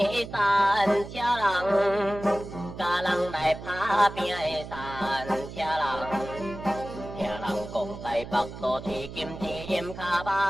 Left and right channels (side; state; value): right; noise; hum, 12 dB below the sound